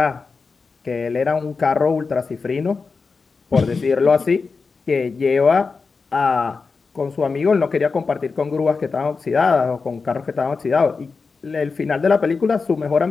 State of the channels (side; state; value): right; quieter; 4.6 dB